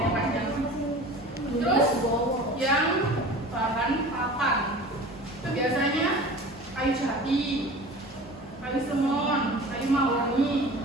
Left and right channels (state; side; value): normal; both; correlation 0.39